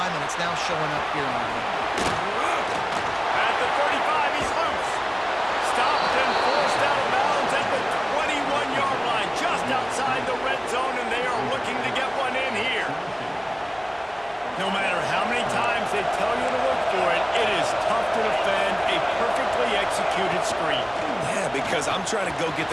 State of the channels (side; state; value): both; identical; correlation 1.00